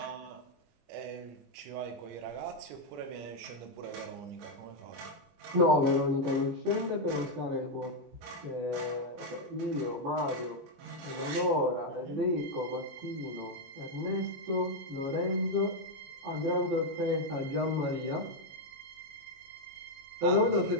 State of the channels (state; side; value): late; left; 22 ms